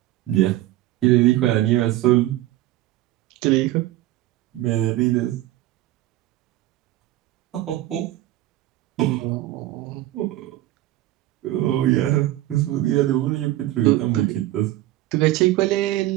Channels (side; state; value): left; quieter; 15.6 dB